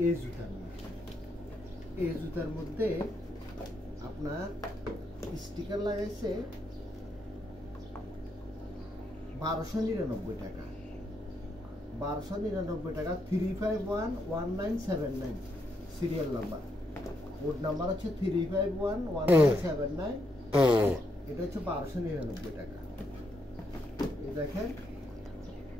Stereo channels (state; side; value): normal; both; correlation 0.78